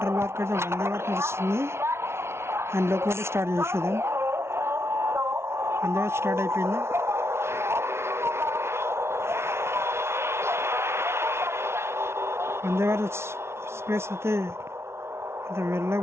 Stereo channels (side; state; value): left; late; 0.12 ms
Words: వరకు అయితే వందే భారత్ నడుస్తుంది. అండ్ లోపల స్టార్ట్ చేసేదాం. వందే భారత్ స్టార్ట్ అయిపోయింది. వందే భారత్ ఎక్స్ప్రెస్ అయితే